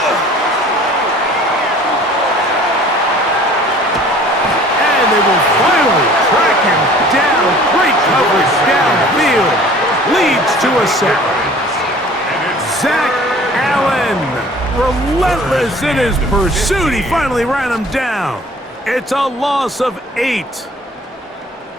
And they will finally track him down. Great coverage downfield. Leads to a sack. Zach Allen, relentless in his pursuit. He finally ran him down. It's a loss of 8.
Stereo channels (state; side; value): normal; both; correlation 0.49